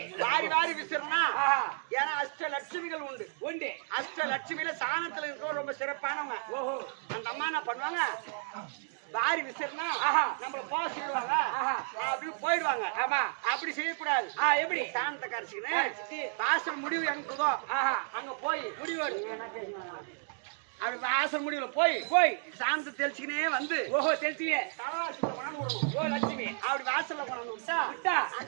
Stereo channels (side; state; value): left; silent; digital silence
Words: வாரி விசிறனா. ஏன்னா அஷ்டலட்சுமிகள் உண்டு. அஷ்டலட்சுமியில சாணத்துல இருக்கிற ரொம்ப சிறப்பானவங்க. ஓஹோ, அந்த அம்மா என்ன பண்ணுவாங்க? வாரி விசிறனா நம்மள போக சொல்லுவாங்க. அப்படி போயிடுவாங்க. ஆமா, அப்படி செய்யக்கூடாது. எப்படி? சாணத்தை கரைச்சிக்கின்னு வாசல் முடிவு எங்குதோ அங்க போய் முடிவு அப்படி வாசல் முடிவுல போய் சாந்தத்தை தெளிச்சுக்கினே வந்து ஓஹோ தெளிச்சுக்கினே தலவாசல கொண்டாந்து விடணும். ஓ லட்சுமி அப்படி வாசல்ல கொண்டாந்து விட்டா